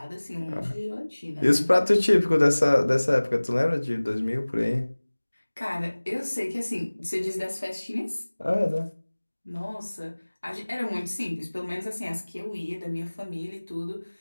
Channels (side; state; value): both; inverted; correlation -1.00